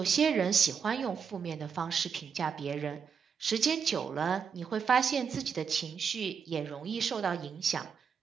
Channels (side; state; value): left; quieter; 6.5 dB